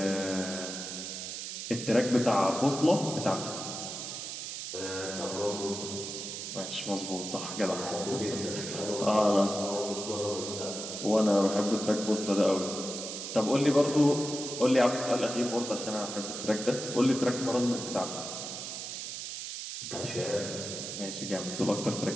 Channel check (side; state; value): right; noise; hiss, 7 dB below the sound